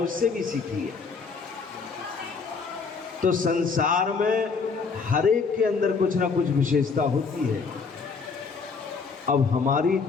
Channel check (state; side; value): quieter; right; 5.0 dB